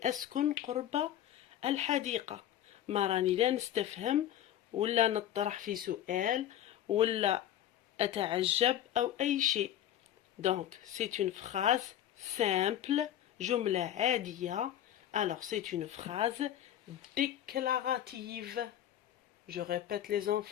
أسكن قرب الحديقة. ما راني لا نستفهم ولا نطرح في سؤال ولا أتعجب أو أي شيء. Donc, c'est une phrase simple, جملة عادية. Alors, c'est une phrase déclarative. Je répète les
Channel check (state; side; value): quieter; right; 11.6 dB